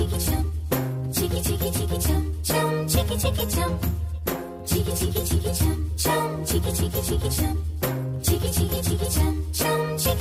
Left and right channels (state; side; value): identical; both; correlation 1.00